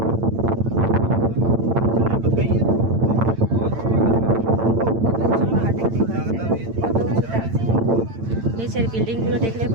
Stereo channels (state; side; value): late; left; 8.9 ms